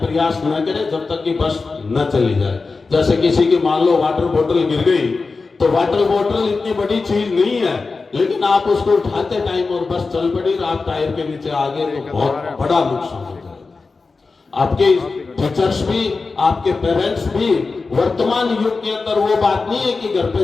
न करें जब तक कि बस न चली जाए। जैसे किसी की मान लो वाटर बोतल गिर गई, तो वाटर बोतल इतनी बड़ी चीज नहीं है, लेकिन आप उसको उठाते टाइम और बस चल पड़ी और आप टायर के नीचे आ गए तो बहुत बड़ा नुकसान हो जाएगा। आपके टीचर्स भी, आपके पेरेंट्स भी, वर्तमान युग के अंदर वो बात नहीं है कि घर पे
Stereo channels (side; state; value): right; quieter; 4.1 dB